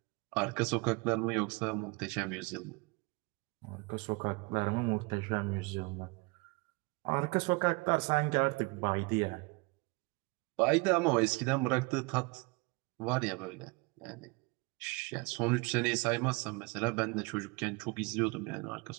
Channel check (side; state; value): left; quieter; 27.9 dB